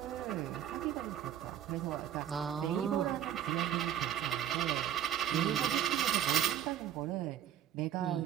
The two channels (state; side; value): quieter; left; 10.5 dB